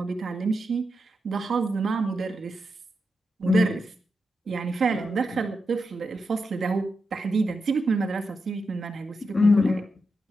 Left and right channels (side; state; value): both; normal; correlation 0.87